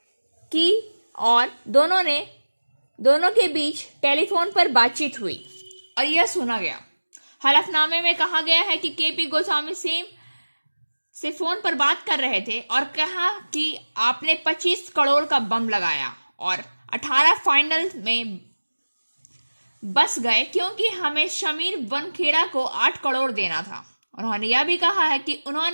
और दोनों के बीच टेलीफोन पर बातचीत हुई और यह सुना गया। हलफनामे में कहा गया है कि केपी गोस्वामी सेम से फोन पर बात कर रहे थे और कहा कि आपने 25 करोड़ का बम लगाया और 18 फाइनल में बस गए क्योंकि हमें शमीर वनखेड़ा को 8 करोड़ देना था। उन्होंने यह भी कहा है कि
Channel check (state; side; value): inverted; both; correlation -1.00